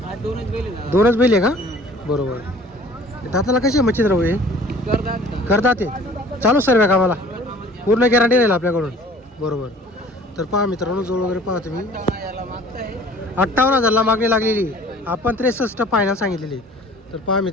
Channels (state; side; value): normal; both; correlation 0.50